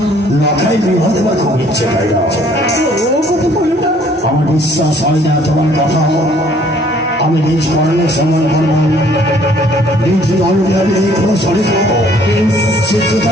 লখাই বিবাহ দেওয়ার খুব ইচ্ছে, তাই না? ও কথা বলো না। আমার বিশ্বাস হয় না তোমার কথা। আমি নিজ কর্মে সময় করব, নিজ দলকে আমি দেখবো সরেগা। সে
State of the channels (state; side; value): normal; both; correlation 0.60